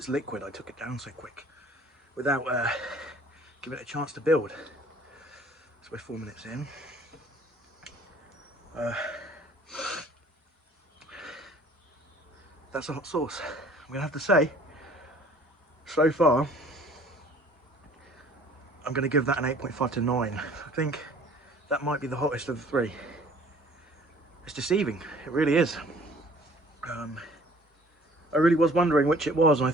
liquid, I took it down so quick without giving it a chance to build. So we're 4 minutes in. That's a hot sauce. I'm gonna have to say, so far, I'm gonna give that an 8.5 to 9. I think that might be the hottest of the three. It's deceiving, it really is. I really was wondering which it was, and I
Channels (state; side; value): normal; both; correlation 0.52